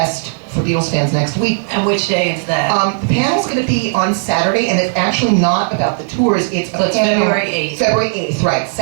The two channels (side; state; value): left; silent; digital silence